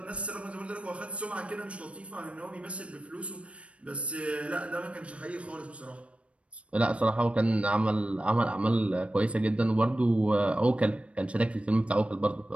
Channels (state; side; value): late; left; 0.062 ms